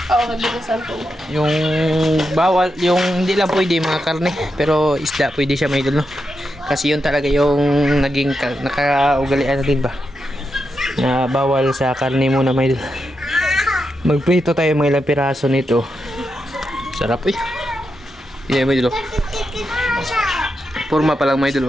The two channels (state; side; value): normal; both; correlation 0.86